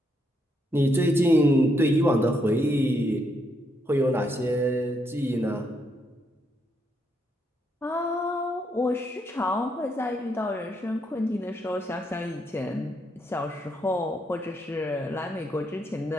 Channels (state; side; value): normal; both; correlation 0.77